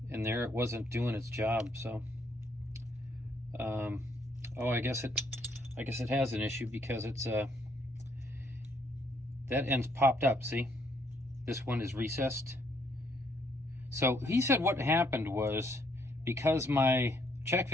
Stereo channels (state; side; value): normal; both; correlation 0.69